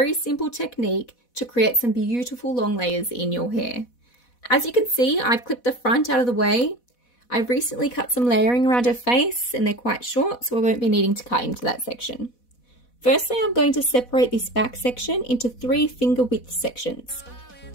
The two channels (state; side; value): late; right; 4.1 ms